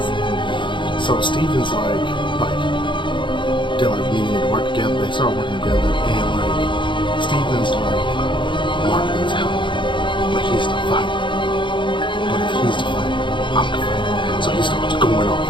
So Steven's like they're like needing to work together. They start working together, and like Steven's like, Mark needs help, but he's the fighter. But if he's the fighter, I'm the fighter. So he starts going off.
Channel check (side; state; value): right; late; 0.23 ms